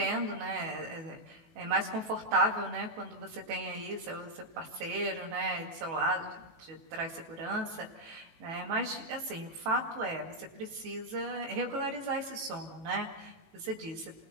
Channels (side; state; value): left; late; 18 ms